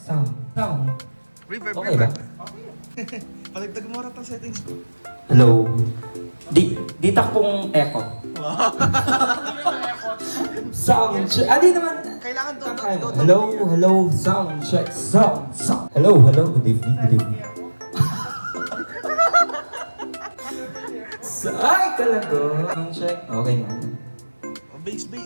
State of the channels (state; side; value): inverted; both; correlation -1.00